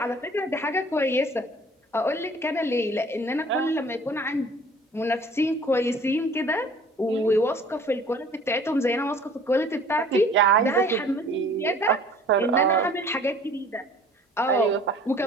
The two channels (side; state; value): both; normal; correlation 0.51